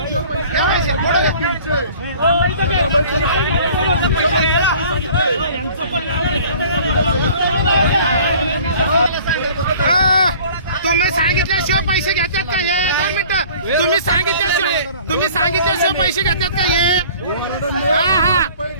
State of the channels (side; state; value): both; inverted; correlation -0.49